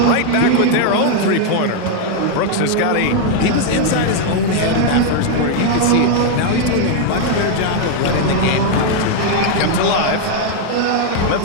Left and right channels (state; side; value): different; both; correlation 0.00